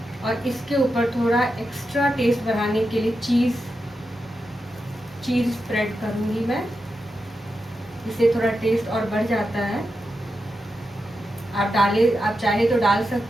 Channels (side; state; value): both; normal; correlation 0.88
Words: और इसके ऊपर थोड़ा एक्स्ट्रा टेस्ट बढ़ाने के लिए चीज़ स्प्रेड करूँगी मैं। इससे थोड़ा टेस्ट और बढ़ जाता है। आप चाहे तो डाल